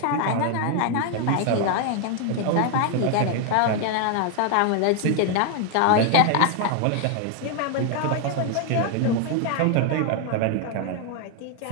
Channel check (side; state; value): both; different; correlation 0.00